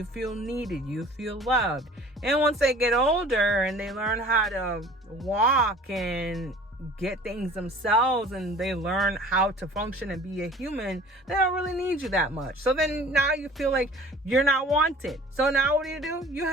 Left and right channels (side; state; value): both; normal; correlation 0.46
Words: feel needed. You feel loved. And once they get older and they learn how to walk and get things themselves, and they learn how to function and be a human, they don't really need you that much. So then now you feel like you're not wanted. So now what do? You